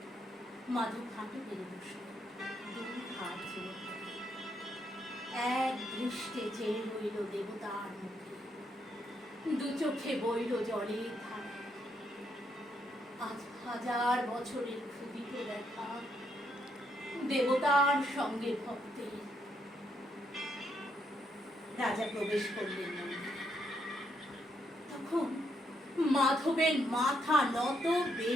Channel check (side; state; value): both; normal; correlation 0.76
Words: মাধব হাঁটু পেরে বসল, দুই হাত জোর করে। এক দৃষ্টে চেয়ে রইল দেবতার মুখে, দু চোখে বইল জলের ধারা। আজ 1000 বছরের ক্ষুদিত দেখা, দেবতার সঙ্গে ভক্তের। রাজা প্রবেশ করলেন মন্দিরে। তখন মাধবের মাথা নত,